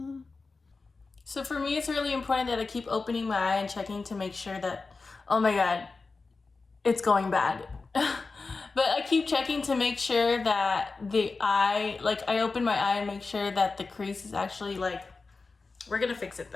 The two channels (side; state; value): right; quieter; 4.1 dB